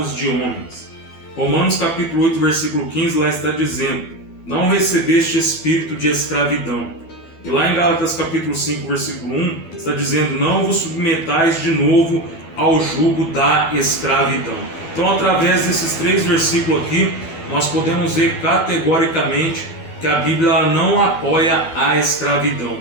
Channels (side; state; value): right; late; 12 ms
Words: de homens. Romanos capítulo 8, versículo 15, lá está dizendo: não recebeste espírito de escravidão. E lá em Gálatas capítulo 5, versículo 1, está dizendo: não vos submetais de novo ao jugo da escravidão. Então, através desses 3 versículos aqui, nós podemos ver categoricamente que a Bíblia não apoia a escravidão.